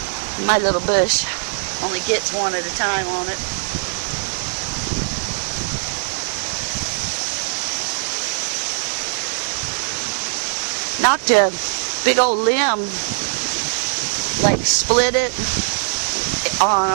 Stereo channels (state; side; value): silent; left; digital silence